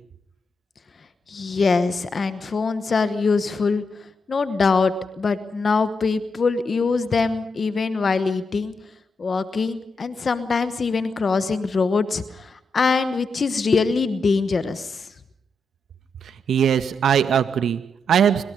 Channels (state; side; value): normal; both; correlation 0.83